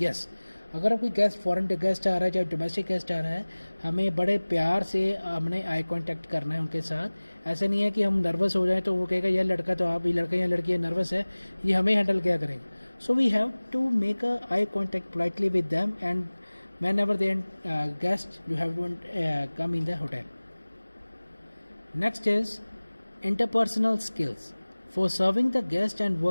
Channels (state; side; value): inverted; both; correlation -1.00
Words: Yes, अगर कोई गेस्ट फॉरेन गेस्ट आ रहा है, चाहे डोमेस्टिक गेस्ट आ रहा है, हमें बड़े प्यार से हमने आई कॉन्टैक्ट करना है उनके साथ. ऐसा नहीं है कि हम नर्वस हो जाए तो वो कहेगा यह लड़का तो आप, ये लड़का या लड़की नर्वस है, ये हमें हैंडल क्या करेगा. So we have to make a eye contact politely with them and whenever they guest you have to come in the hotel. Next is interpersonal skills. For serving the guest and